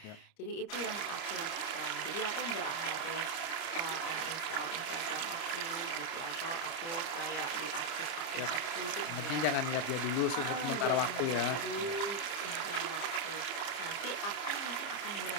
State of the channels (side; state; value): right; late; 30 ms